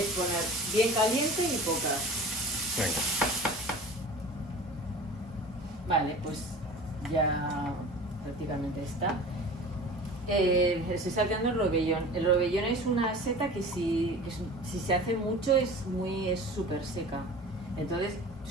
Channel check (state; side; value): normal; both; correlation 0.39